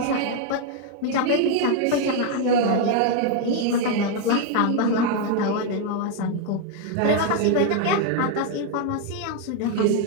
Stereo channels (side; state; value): both; different; correlation 0.01